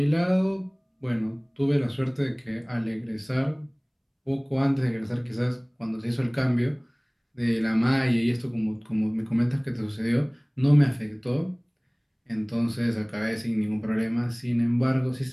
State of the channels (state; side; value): identical; both; correlation 1.00